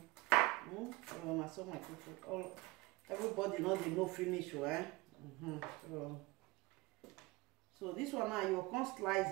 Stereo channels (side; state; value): left; quieter; 22.0 dB